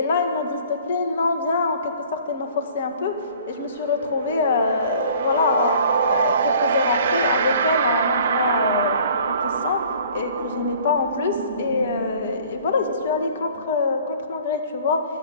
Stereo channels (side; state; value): both; inverted; correlation -0.51